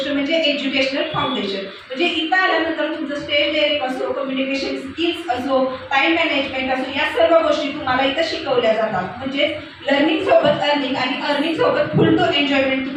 म्हणजे एज्युकेशनल फाउंडेशन. म्हणजे इथं आल्यानंतर तुमचं स्टेज डेअरिंग असो, कम्युनिकेशन स्किल्स असो, टाईम मॅनेजमेंट असो, या सर्व गोष्टी तुम्हाला इथं शिकवल्या जातात. म्हणजे लर्निंग सोबत अर्निंग आणि अर्निंग सोबत फुल टू एन्जॉयमेंट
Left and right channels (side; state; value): both; identical; correlation 1.00